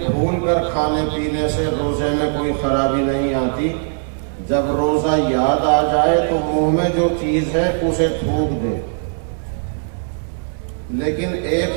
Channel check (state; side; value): silent; left; digital silence